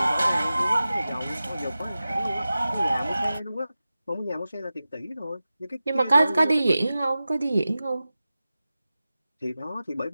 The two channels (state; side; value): inverted; both; correlation -0.95